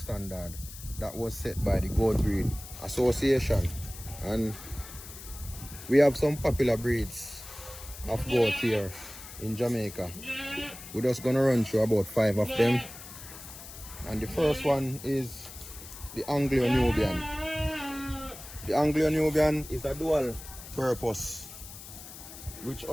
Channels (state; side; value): noise; left; hiss, 14 dB below the sound